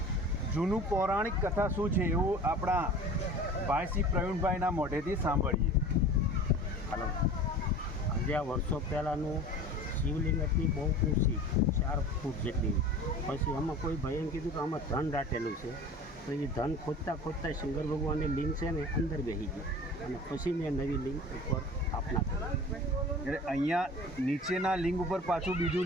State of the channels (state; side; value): normal; both; correlation 0.40